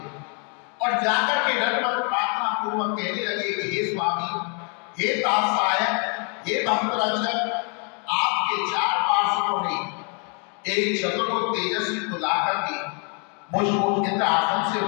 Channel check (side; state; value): right; quieter; 37.5 dB